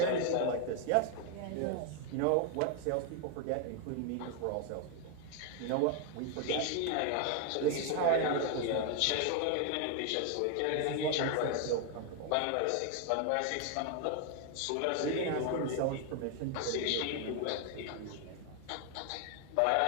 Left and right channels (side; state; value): both; different; correlation 0.01